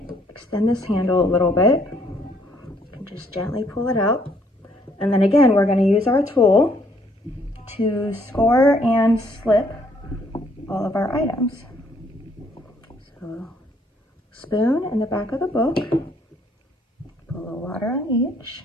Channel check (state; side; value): normal; both; correlation 0.66